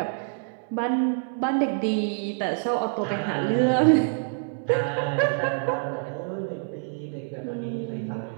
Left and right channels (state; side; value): silent; left; digital silence